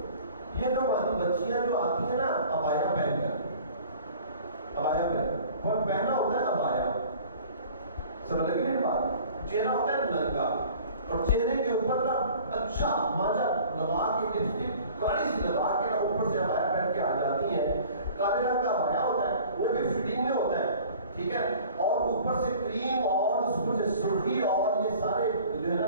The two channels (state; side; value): inverted; both; correlation -0.48